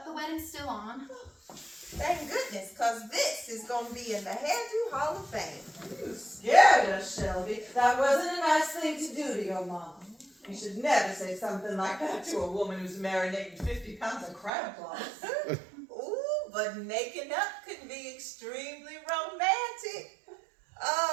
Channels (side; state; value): left; drops out; at 14.5 s